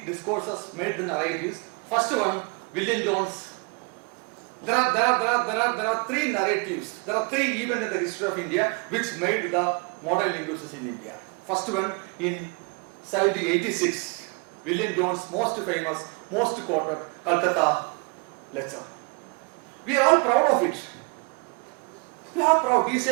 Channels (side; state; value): left; quieter; 33.7 dB